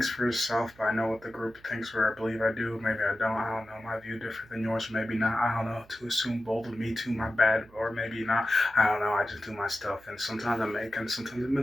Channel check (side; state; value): right; noise; hum, 26 dB below the sound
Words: for yourself, but I know what the group thinks, or I believe I do. Maybe I don't. I don't know. My view different than yours, maybe not. I don't know. To assume bold of me too, my bad, or maybe not. I don't know. I just do my stuff, and sometimes I make, and sometimes I